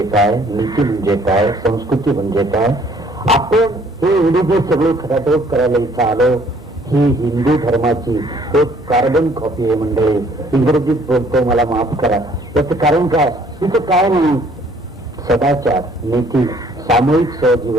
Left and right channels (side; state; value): both; normal; correlation 0.60